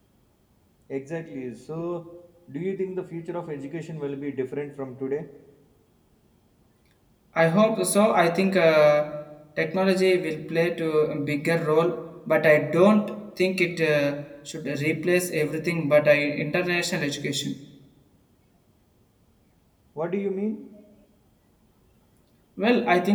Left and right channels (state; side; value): identical; both; correlation 1.00